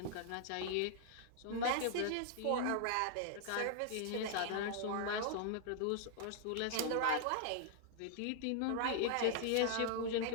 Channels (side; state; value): both; different; correlation -0.01